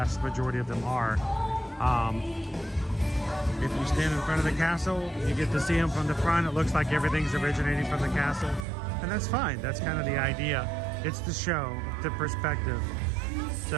majority of them are. If you stand in front of the castle, you get to see them from the front. It looks like everything's originating from the castle, and that's fine. That's kind of the idea. It's the show, the perspective.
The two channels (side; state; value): left; drops out; at 8.7 s